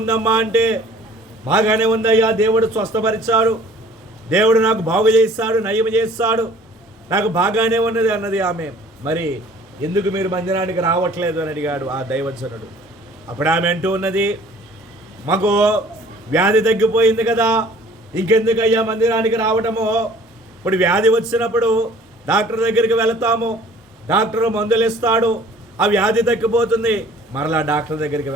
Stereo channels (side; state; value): both; normal; correlation 0.52